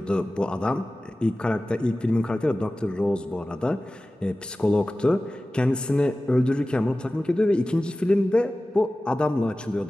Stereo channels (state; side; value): normal; both; correlation 0.96